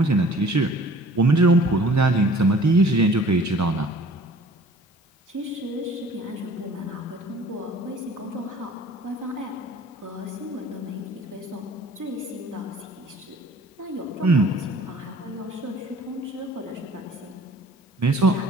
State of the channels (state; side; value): normal; both; correlation 0.50